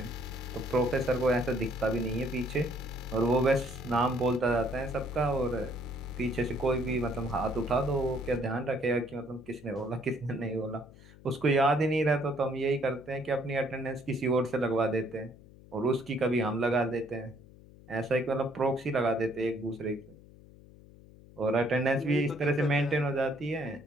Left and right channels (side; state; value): left; noise; hum, 22 dB below the sound